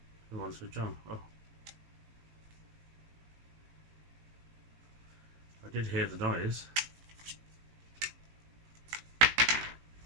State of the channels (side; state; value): left; late; 18 ms